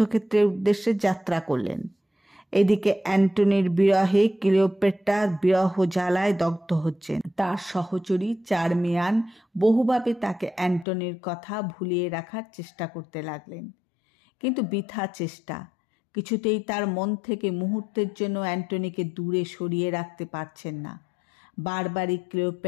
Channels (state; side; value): drops out; right; at 10.9 s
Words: উদ্দেশ্যে যাত্রা করলেন। এদিকে অ্যান্টনির বিরহে ক্লিওপেট্রা বিরহ জ্বালায় দগ্ধ হচ্ছেন। তার সহচরী চার্মিয়ান বহুভাবে তাকে অ্যান্টনির কথা ভুলিয়ে রাখার চেষ্টা করতে লাগলেন, কিন্তু বৃথা চেষ্টা। কিছুতেই তার মন থেকে মুহূর্তের জন্য অ্যান্টনিকে দূরে সরিয়ে রাখতে পারছেন না। বারবারই